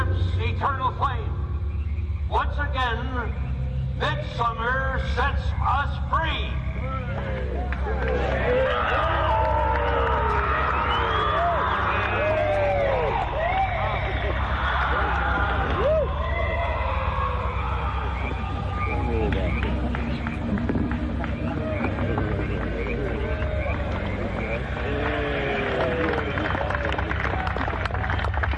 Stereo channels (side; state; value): both; identical; correlation 1.00